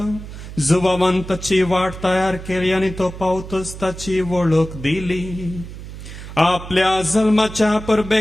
जुबावान ताची वाट तयार केली आनी तो पावतच ताची वळख दिली. आपल्या जल्माच्या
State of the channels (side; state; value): right; noise; hum, 12 dB below the sound